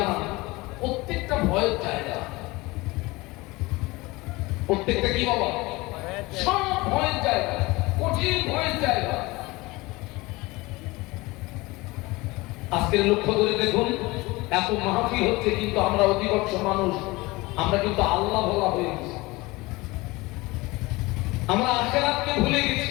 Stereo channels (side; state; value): right; quieter; 22.2 dB